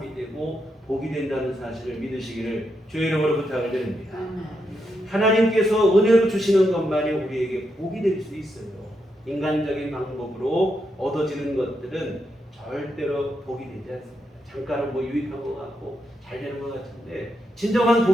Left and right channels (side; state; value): both; normal; correlation 0.82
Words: 되고 복이 된다는 사실을 믿으시기를 주의 이름으로 부탁을 드립니다. 하나님께서 은혜로 주시는 것만이 우리에게 복이 될 수 있어요. 인간적인 방법으로 얻어지는 것들은 절대로 복이 되지 않습니다. 잠깐은 뭐 유익한 것 같고 잘 되는 것 같은데 진정한